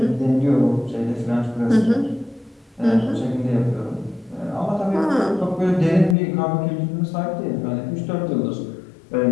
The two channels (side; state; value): right; drops out; at 6.2 s